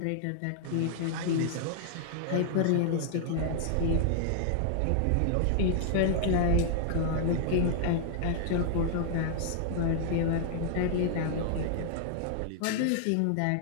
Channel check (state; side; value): different; both; correlation -0.01